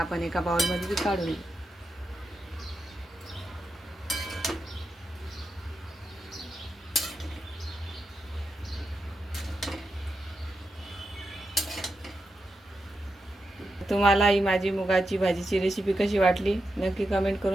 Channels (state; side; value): normal; both; correlation 0.87